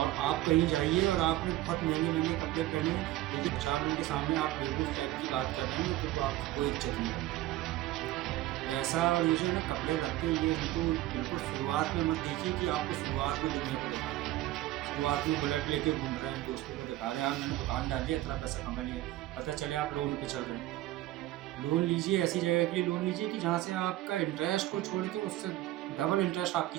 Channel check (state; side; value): quieter; left; 15.6 dB